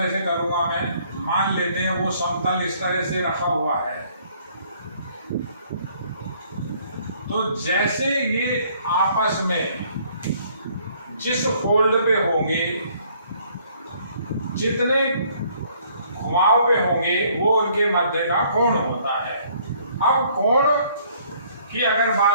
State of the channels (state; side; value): inverted; both; correlation -0.62